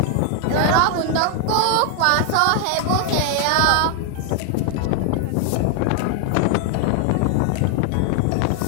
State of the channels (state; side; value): different; both; correlation 0.00